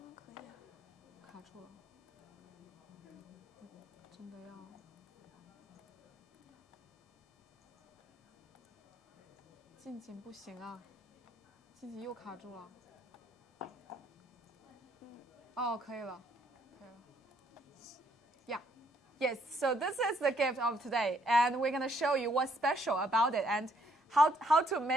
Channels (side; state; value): both; normal; correlation 0.68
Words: 卡住了，真的要。静静不行啊，静静又卡住了。哦，可以了，可以了。Yeah, yes. So this is the gift of today, and we're gonna show you what's special about it and how to